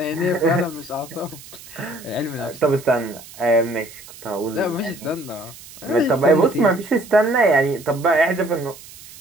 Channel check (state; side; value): noise; right; hiss, 18 dB below the sound